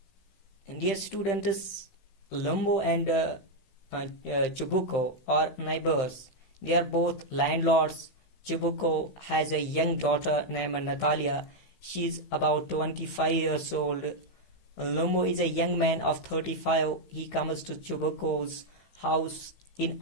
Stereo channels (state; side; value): late; right; 15 ms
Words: And dear students, Lomo and Chubukov are neighbors. They are both landlords. Chubukov has a young daughter named Natalia. She is about 25 years old. Lomo is a young man of 35. He comes to Chubukov's house in